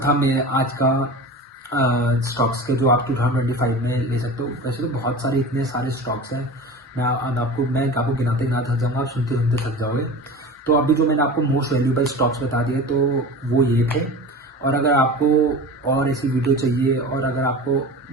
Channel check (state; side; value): normal; both; correlation 0.33